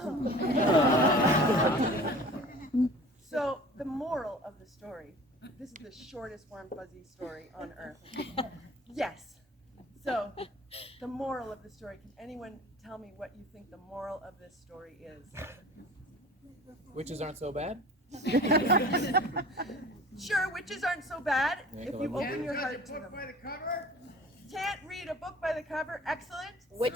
So the moral of the story, this is the shortest warm fuzzy story on earth. Yes. So the moral of the story, can anyone tell me what you think the moral of this story is? Witches aren't so bad? Sure, witches aren't so bad if you Can't open your heart to them. Can't read a book by the cover. Excellent.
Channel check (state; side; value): normal; both; correlation 0.44